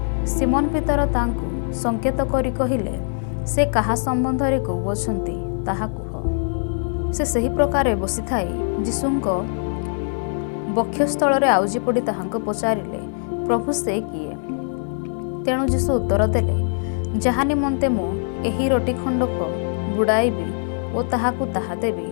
ସିମୋନ ପିତର ତାଙ୍କୁ ସଙ୍କେତ କରି କହିଲେ, ସେ କାହା ସମ୍ବନ୍ଧରେ କହୁଅଛନ୍ତି ତାହା କୁହ। ସେ ସେହି ପ୍ରକାରେ ବସିଥାଇ ଯୀଶୁଙ୍କ ବକ୍ଷସ୍ଥଳରେ ଆଉଜି ପଡ଼ି ତାହାଙ୍କୁ ପଚାରିଲେ, ପ୍ରଭୁ, ସେ କିଏ? ତେଣୁ ଯୀଶୁ ଉତ୍ତର ଦେଲେ, ଯାହା ନିମନ୍ତେ ମୁଁ ଏହି ରୋଟି ଖଣ୍ଡକ ବୁଡ଼ାଇବି ଓ ତାହାକୁ ତାହା ଦେବି,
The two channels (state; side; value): silent; right; digital silence